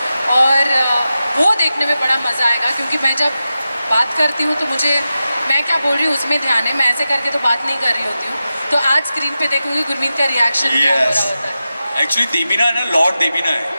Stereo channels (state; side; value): inverted; both; correlation -0.92